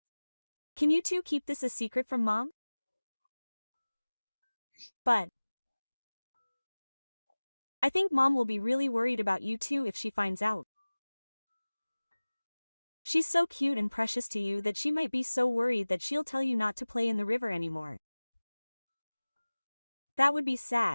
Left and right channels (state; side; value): inverted; both; correlation -1.00